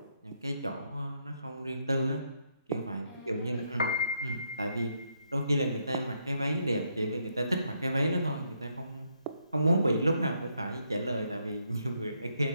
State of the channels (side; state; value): both; inverted; correlation -0.76